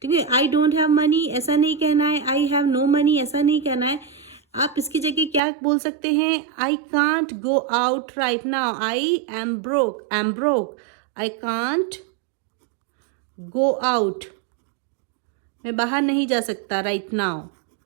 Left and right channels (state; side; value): drops out; left; at 5.4 s